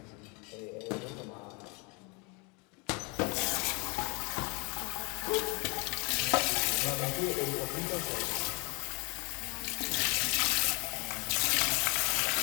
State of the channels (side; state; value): right; quieter; 30.6 dB